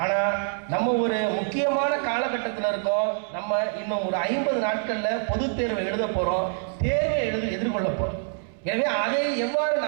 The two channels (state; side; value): silent; left; 61 dB below the other